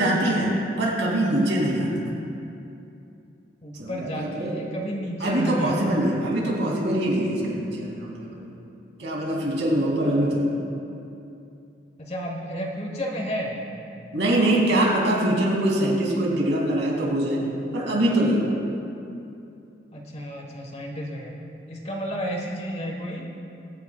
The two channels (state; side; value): normal; both; correlation 0.58